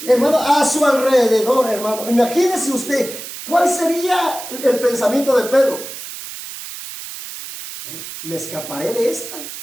hermano, a su alrededor, hermano. Imagínese usted, ¿cuál sería el pensamiento de Pedro? ¿Me escaparé de esta?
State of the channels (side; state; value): right; noise; hiss, 11 dB below the sound